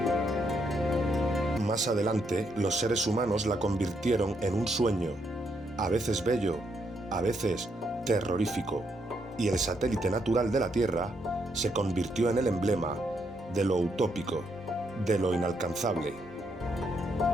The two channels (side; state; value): both; normal; correlation 0.76